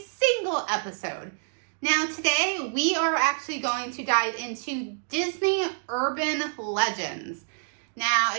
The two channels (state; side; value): silent; left; digital silence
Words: episode. Now today, we are actually going to dive into Disney urban legends. Now,